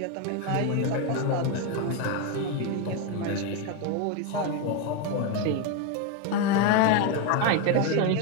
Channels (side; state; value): both; different; correlation 0.02